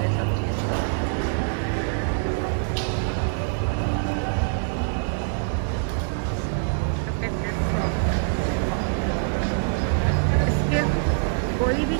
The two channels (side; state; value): left; silent; digital silence